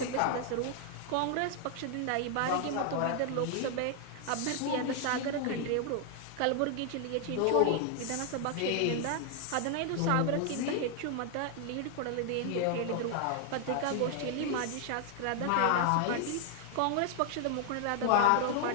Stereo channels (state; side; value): different; both; correlation 0.00